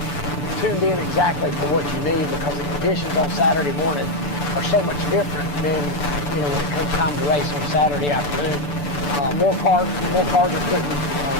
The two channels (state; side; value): late; right; 6.9 ms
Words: tuned in exactly for what you need, because the conditions on Saturday morning are so much different than when it comes time to race on Saturday afternoon. More cars are putting